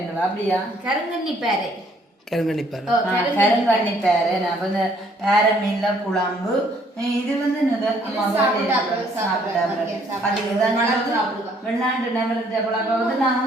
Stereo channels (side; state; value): both; normal; correlation 0.64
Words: அப்படியா கருங்கண்ணி பேரை கருங்கணிப்பார் கருங்கண்ணி பேரை நான் வந்து பேர மீன்ல குழம்பு. இது வந்து வெளிநாட்டு நபர்கிட்ட பழக்கம் வந்து